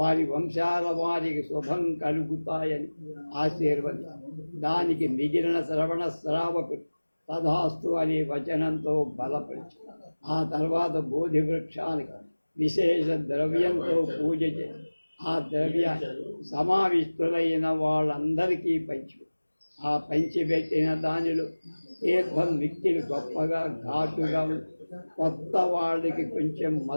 వంశాల వారికి శుభం కలుగుతాయని ఆశీర్వది, దానికి మిగిలిన శ్రవణ శ్రావకుడు తథాస్తు అనే వచనంతో బలపరిచి ఆ తర్వాత బోధి వృక్షానికి విశేష ద్రవ్యంతో పూజ చేసి ఆ ద్రవ్యాన్ని సమావిష్టులైన వాళ్ళందరికీ ఆ పంచిపెట్టిన దానిలో తీర్థం మిక్కిలి గొప్పగా ఘాటుగా కొత్త వాళ్ళకి కొంచెం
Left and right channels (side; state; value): both; inverted; correlation -1.00